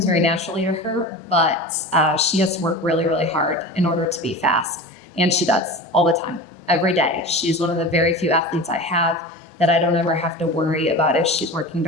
very naturally to her, but she has to work really, really hard in order to be fast. And she does all the time, every day. She's one of the very few athletes I have that I don't ever have to worry about if she's working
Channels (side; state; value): both; normal; correlation 0.32